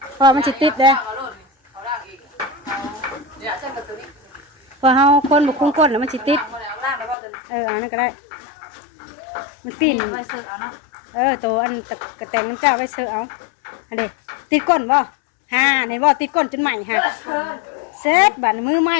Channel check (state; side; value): drops out; right; at 7.2 s